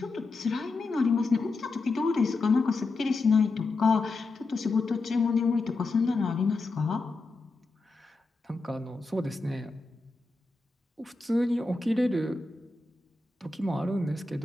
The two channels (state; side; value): quieter; right; 3.5 dB